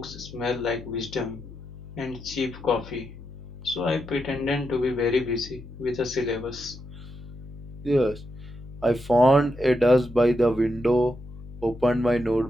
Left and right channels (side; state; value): left; noise; hum, 15 dB below the sound